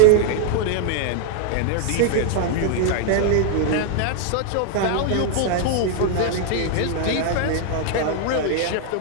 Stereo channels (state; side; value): different; both; correlation 0.00